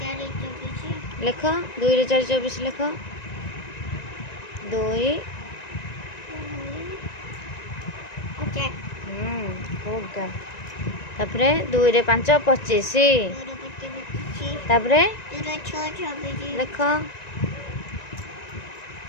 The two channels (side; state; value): right; late; 1.9 ms